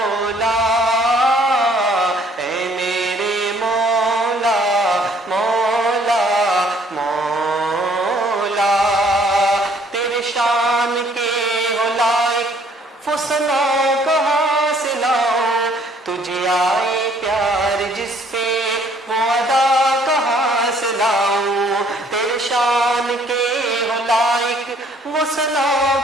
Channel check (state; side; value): normal; both; correlation 0.61